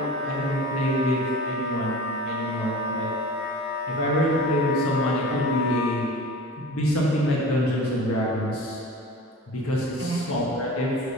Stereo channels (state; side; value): normal; both; correlation 0.37